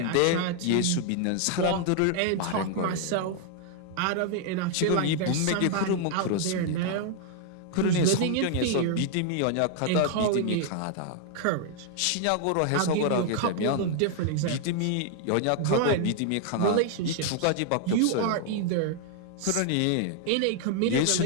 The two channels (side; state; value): both; different; correlation 0.00